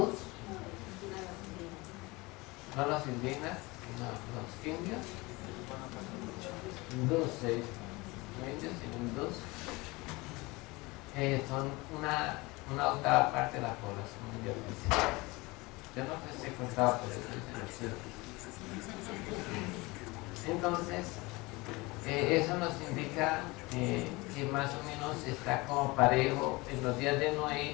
no los indígenas, sino los indios, hindús se dice, los indios y hindús, son una octava parte de la población mundial. Yo no sé si he contado, pero eso es cierto. Entonces, eso nos indica que más o menos está como parejo en los días de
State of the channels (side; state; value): right; quieter; 23.5 dB